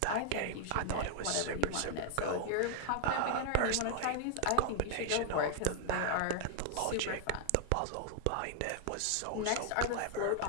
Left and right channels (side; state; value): both; different; correlation 0.00